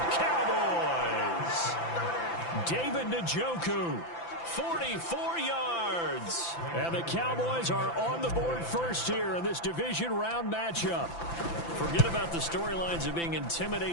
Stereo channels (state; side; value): late; right; 5.9 ms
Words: Cowboys! David Njoku, 44 yards. And the Cowboys are on the board first here in this division round matchup. Forget about the storylines of being